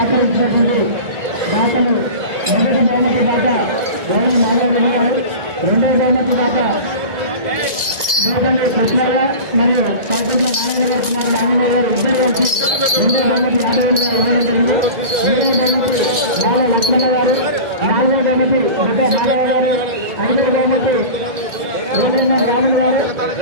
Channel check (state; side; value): late; left; 2.0 ms